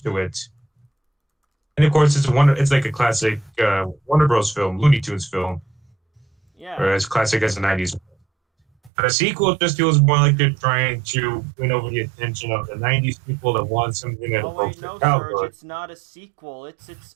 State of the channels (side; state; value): left; drops out; at 8.9 s